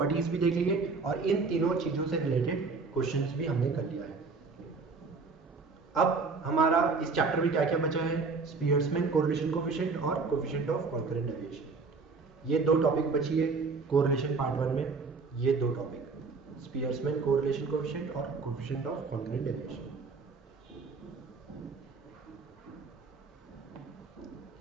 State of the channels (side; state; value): left; quieter; 4.5 dB